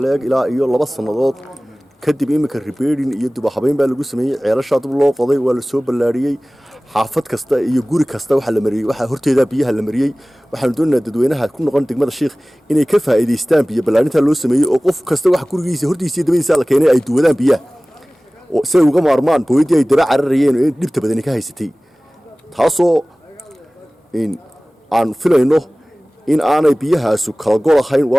leeg ilaa iyo 2 sanadood kadib imika repairing iyo dib u habeyn baa lagu sameeyay ceelasha dib loo qoday waa la soo ballaariyay xaafad kasta iyo guri kasta waxa la mariyay waxa horteeda biyaha la mariyay waxaan doonaynaa dadweynaha ku noqon degmada Sheekh inay ka faa'iideystaan biyo ballaarinta loo sameeyay oo qof kasta wax gurigiisa hortiisa dibadiisa la keenay ay duwadaan biyaha oo say uga maarmaan booydii ay daba cararayeen oo dhibta badan ka haysatay taasoo aan filayno in aanay biyahaasu kala gol ahayn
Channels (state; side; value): normal; both; correlation 0.98